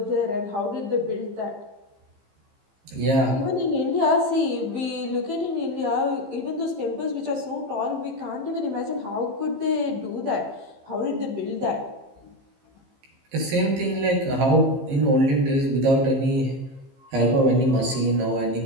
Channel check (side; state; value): left; late; 15 ms